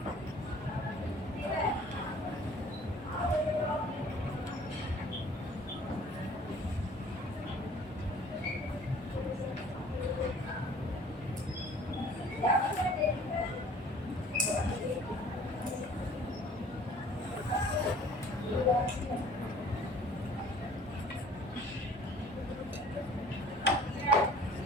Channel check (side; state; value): both; normal; correlation 0.51